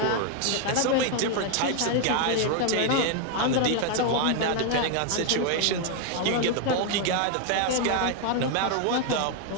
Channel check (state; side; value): different; both; correlation 0.01